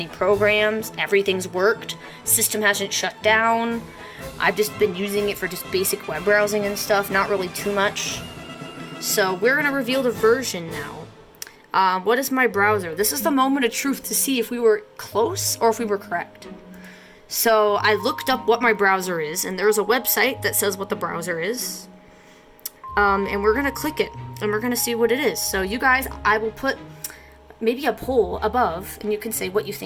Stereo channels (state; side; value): identical; both; correlation 1.00